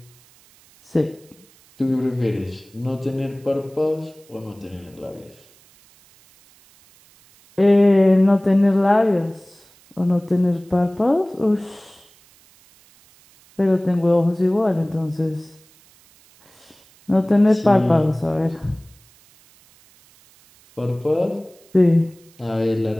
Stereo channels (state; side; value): noise; right; hiss, 29 dB below the sound